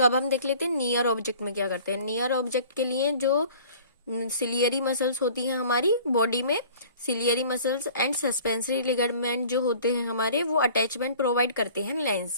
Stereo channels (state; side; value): inverted; both; correlation -0.48